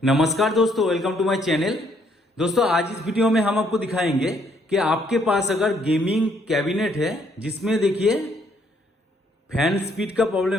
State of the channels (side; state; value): both; normal; correlation 0.68